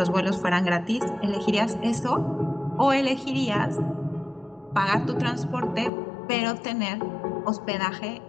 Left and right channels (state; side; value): drops out; right; at 5.9 s